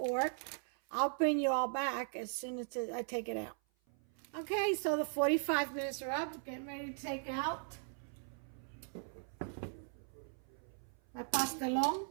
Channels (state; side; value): silent; left; 52 dB below the other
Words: I'll bring you all back as soon as I take it out. Okay, so the 45 minutes are up. Getting ready to take out my Pastelon.